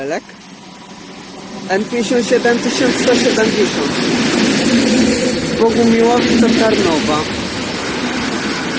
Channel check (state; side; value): identical; both; correlation 1.00